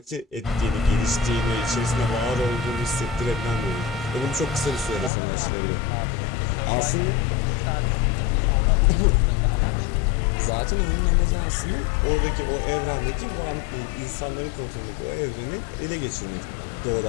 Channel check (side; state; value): right; drops out; at 5.1 s